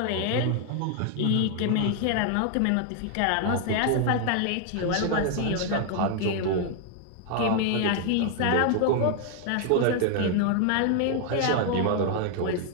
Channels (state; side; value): different; both; correlation 0.00